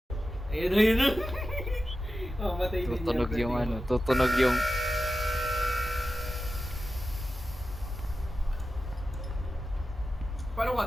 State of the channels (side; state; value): both; normal; correlation 0.92